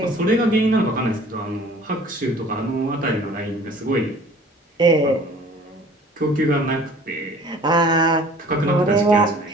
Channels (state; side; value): normal; both; correlation 0.50